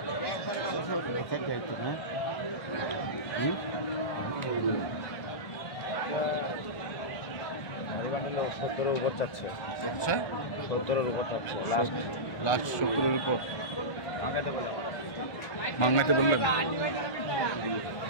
সত্তরের উপর চাচ্ছে। আচ্ছা, 70-এর উপর চাচ্ছে লাস্ট 70-এর উপর মাংনাইতে বললেন।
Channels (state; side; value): late; right; 1.4 ms